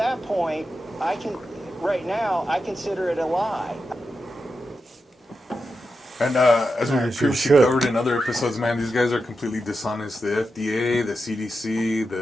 point, right now, I consider it a lie. And as we previously covered in other episodes, man, these guys are completely dishonest. The FDA, the CDC,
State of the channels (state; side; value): normal; both; correlation 0.88